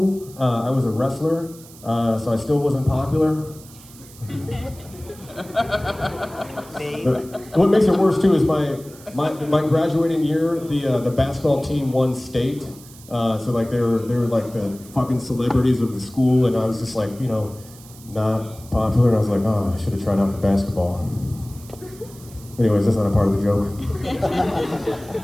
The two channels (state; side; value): noise; right; hiss, 21 dB below the sound